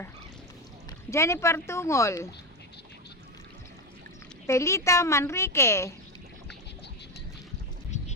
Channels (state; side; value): normal; both; correlation 0.15